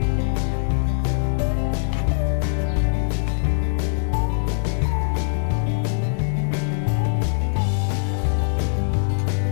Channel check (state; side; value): silent; right; digital silence